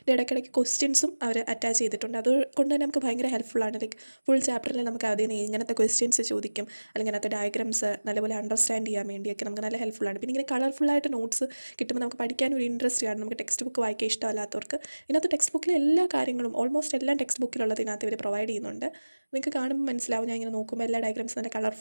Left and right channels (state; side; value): inverted; both; correlation -1.00